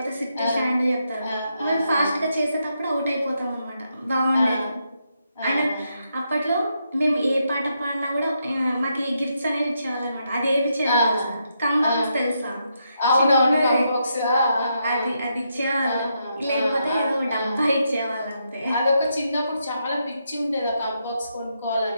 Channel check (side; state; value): both; inverted; correlation -0.80